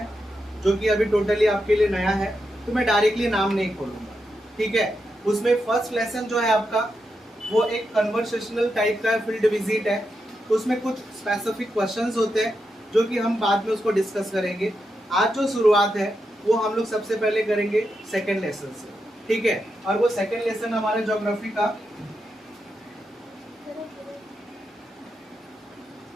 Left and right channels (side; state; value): both; normal; correlation 0.86